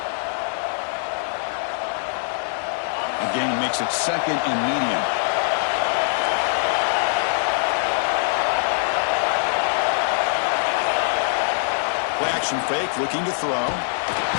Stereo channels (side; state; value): right; silent; digital silence